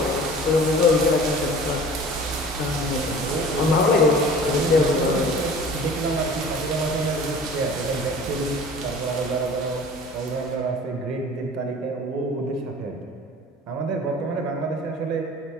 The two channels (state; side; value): normal; both; correlation 0.43